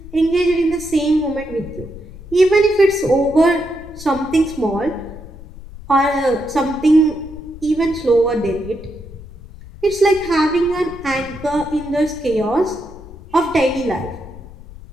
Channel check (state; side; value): noise; left; rumble, 16 dB below the sound